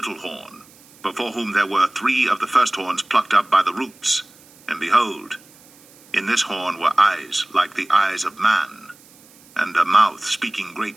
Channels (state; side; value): noise; right; hiss, 26 dB below the sound